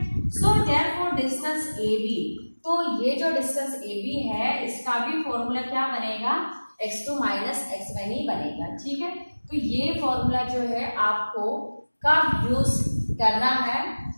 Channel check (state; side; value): inverted; both; correlation -1.00